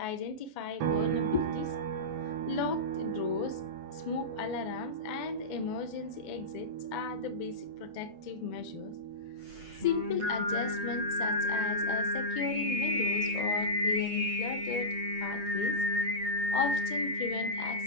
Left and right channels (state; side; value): late; left; 8.2 ms